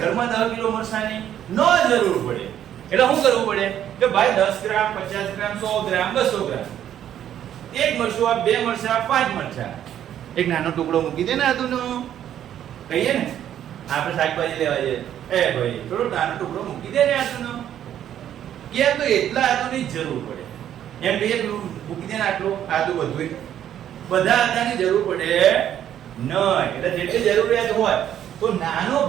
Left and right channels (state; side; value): quieter; left; 10.6 dB